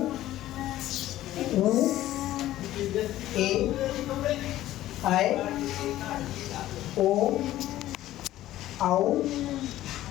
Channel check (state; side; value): quieter; right; 14.4 dB